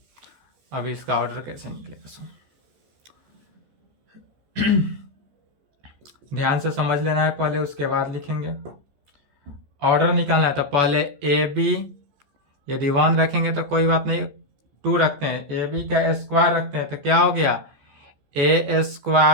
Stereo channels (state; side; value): late; left; 14 ms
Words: अब इसका ऑर्डर कैसे निकलेगा सो ध्यान से समझ लेना है पहले, उसके बाद लिखेंगे। ऑर्डर निकालना है तो पहले ए बी यदि 1 रखेंगे तो कोई बात नहीं, 2 रखते हैं, ए बी का स्क्वायर रखते हैं तो क्या हो गया? ए